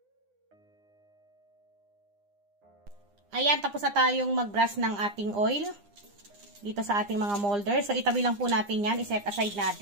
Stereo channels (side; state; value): left; late; 9.8 ms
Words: Ayan, tapos na tayong mag-brush ng ating oil dito sa ating mga molder. So, itabi lang po natin yan. I-set aside